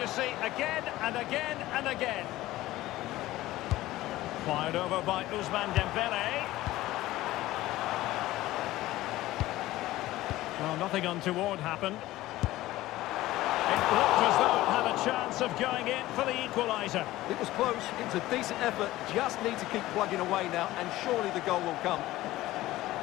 see again and again and again. Fired over by Ousmane Dembele. Well, nothing untoward happened. It looked as though it had a chance of going in for the equaliser. It was close, it was a decent effort, just need to keep plugging away now, and surely the goal will come.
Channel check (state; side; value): quieter; right; 16.5 dB